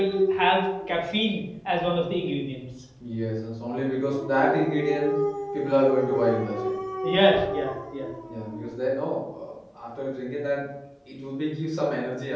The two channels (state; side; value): identical; both; correlation 1.00